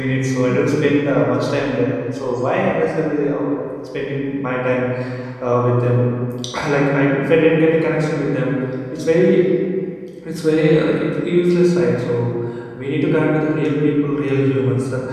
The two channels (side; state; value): both; identical; correlation 1.00